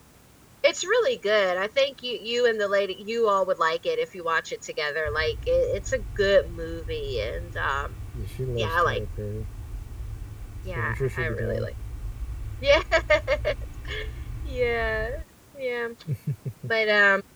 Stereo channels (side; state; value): both; identical; correlation 1.00